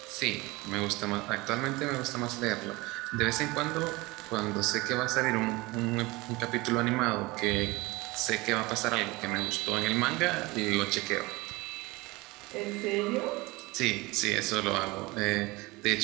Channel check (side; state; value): left; quieter; 22.4 dB